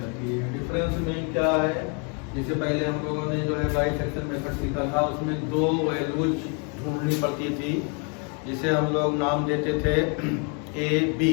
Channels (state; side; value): quieter; right; 36.5 dB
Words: है। डिफरेंस में क्या है, जिससे पहले हम लोगों ने जो है बाइसेक्शन मेथड सीखा था, उसमें दो वैल्यूज ढूंढनी पड़ती थी जिसे हम लोग नाम देते थे ए बी।